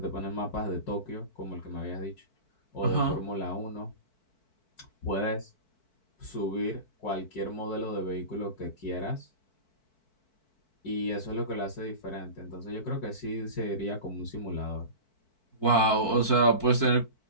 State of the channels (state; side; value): late; right; 4.6 ms